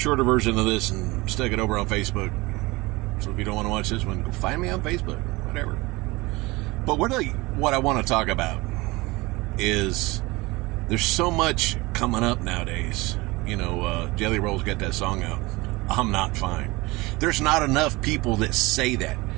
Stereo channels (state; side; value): quieter; left; 22.6 dB